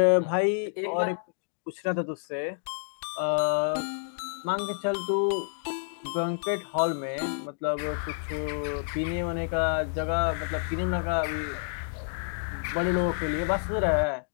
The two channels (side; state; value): right; silent; digital silence